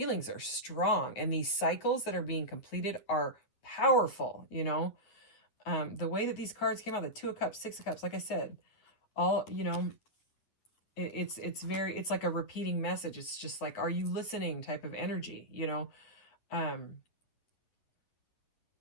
are strong and these cycles that are being completed are powerful. The way that these cards came out, the 2 of Cups, 6 of Cups, like I said, all, it's like a repeating message. It's just like, are you listening type of energy,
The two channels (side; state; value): right; late; 9.7 ms